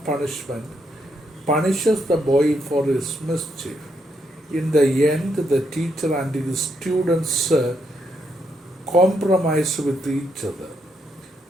Punishment, punishes the boy for his mischief. In the end, the teacher and his students compromise with each other.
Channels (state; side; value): normal; both; correlation 0.77